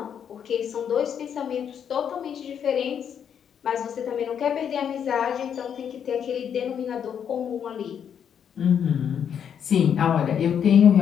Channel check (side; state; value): right; quieter; 8.3 dB